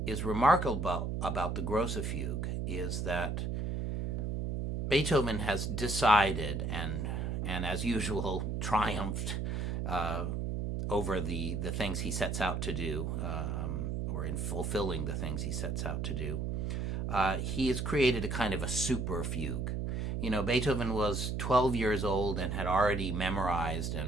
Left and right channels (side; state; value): right; noise; hum, 1 dB below the sound